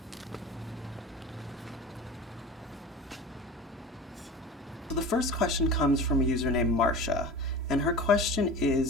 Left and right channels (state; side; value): normal; both; correlation 0.35